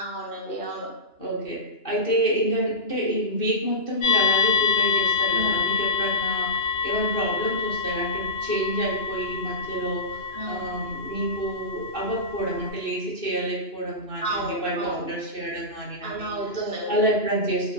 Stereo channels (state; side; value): late; right; 2.9 ms